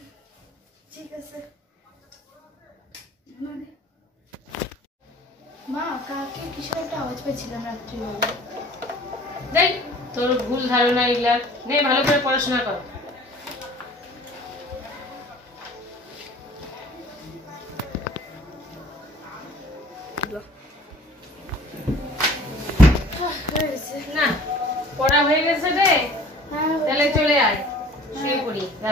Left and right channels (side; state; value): both; normal; correlation 0.50